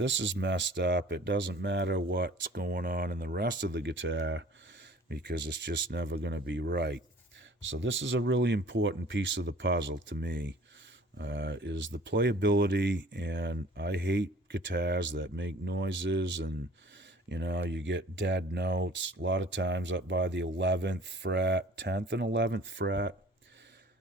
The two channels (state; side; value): normal; both; correlation 0.49